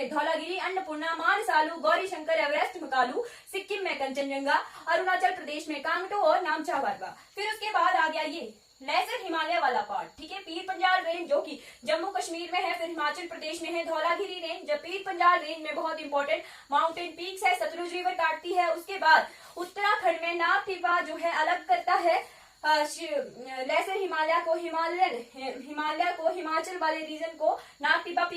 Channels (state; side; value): identical; both; correlation 1.00